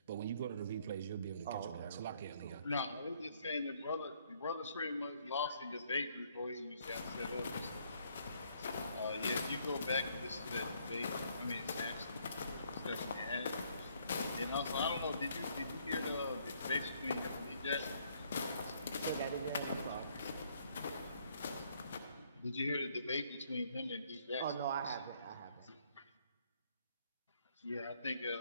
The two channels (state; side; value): inverted; both; correlation -0.68